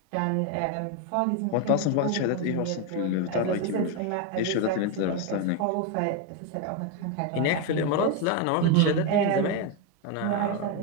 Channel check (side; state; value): both; different; correlation 0.02